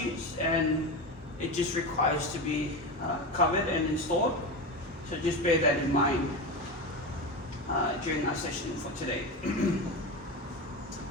and it just requires to be covered and installed. So just bear that in mind during our session for today.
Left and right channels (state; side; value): normal; both; correlation 0.20